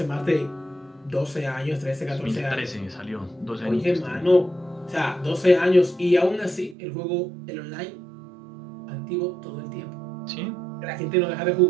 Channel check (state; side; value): drops out; left; at 6.8 s